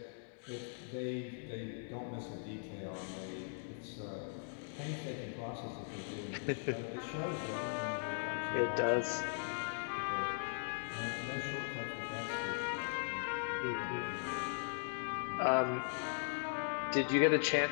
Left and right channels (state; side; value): silent; right; digital silence